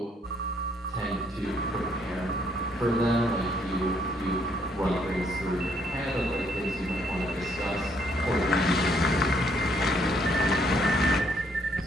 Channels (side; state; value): both; normal; correlation 0.69